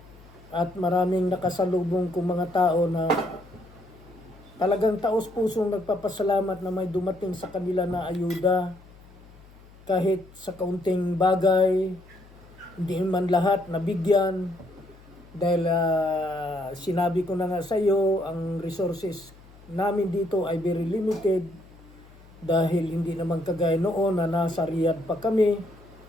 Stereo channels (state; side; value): noise; left; hum, 23 dB below the sound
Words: At maraming nakasalubong kong mga tao na talagang taos-pusong nagpapasalamat na may dumating sa kanila na ayuda. Kahit sa kaunting bagay, hindi man lahat nabigyan. Dahil sinabi ko na nga sa iyo, ang resources namin dito ay very limited dahil hindi naman kagaya noon na nasa Riyadh pa kami.